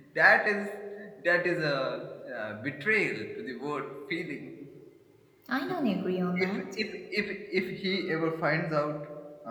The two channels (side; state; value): both; identical; correlation 1.00